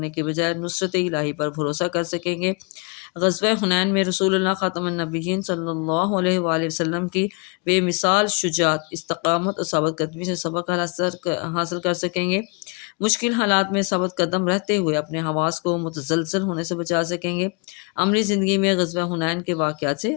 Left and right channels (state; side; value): quieter; right; 32.4 dB